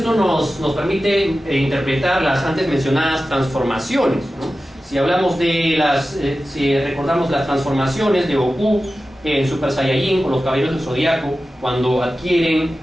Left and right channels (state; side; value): normal; both; correlation 0.94